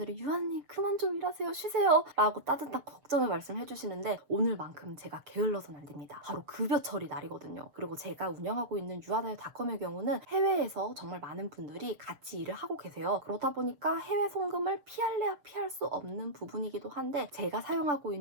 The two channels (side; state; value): left; late; 6.9 ms